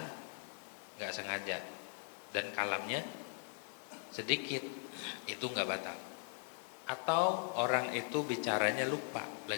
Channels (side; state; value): right; silent; 51 dB below the other